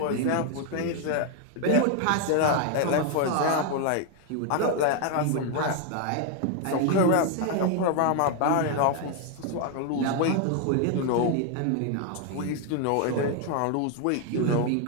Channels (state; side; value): different; both; correlation 0.00